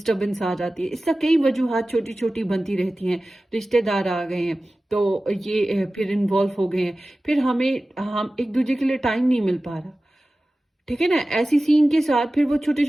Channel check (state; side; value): normal; both; correlation 0.96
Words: आ जाती है। इसका कई वजूहात छोटी छोटी बनती रहती हैं, रिश्तेदार आ गए हैं तो ये फिर इन्वॉल्व हो गए हैं, फिर हम एक दूसरे के लिए टाइम नहीं मिल पा रहा। ठीक है ना, ऐसी सीन के साथ फिर वो छोटे